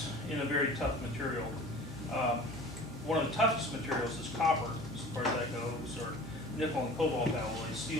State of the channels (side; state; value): both; normal; correlation 0.42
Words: in a very tough material. One of the toughest materials is copper, as far as that goes, or nickel and cobalt alloys.